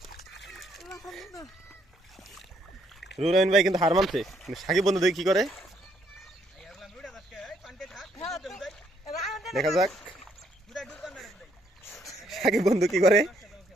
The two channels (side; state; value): both; normal; correlation 0.70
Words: রুরাইন ভাই কিন্তু হার মানছে, সাকিব বন্ধু দেখি কি করে, দেখা যাক সাকিব বন্ধু কি করে,